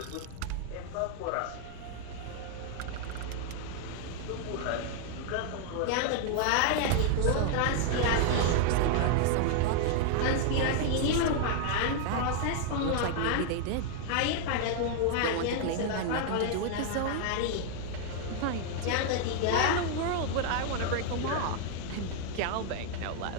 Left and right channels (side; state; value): both; different; correlation 0.00